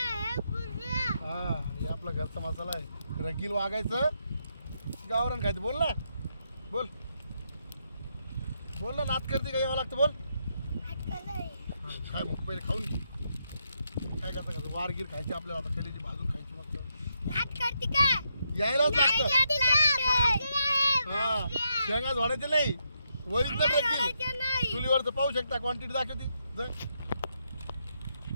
हां हे आपला घरचा मसाला आहे. रगील वागायचं गावरान खायचं बोल ना बोल बोल ना नात करते का यावं लागतं बोल. हां काय मग पहिले खाऊन घे काय करता का वारगीर खायची आपल्याला आता कलेची भाजून खायची मस्त यायलाच लागतं. हां शेंगा झोडायचे नाही ओरिजिनल रगील चुलीवरचं पाहू शकता क्वांटिटी दाखवती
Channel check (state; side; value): inverted; both; correlation -0.80